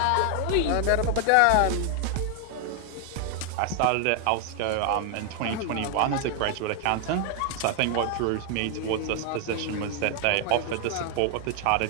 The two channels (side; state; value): both; different; correlation 0.00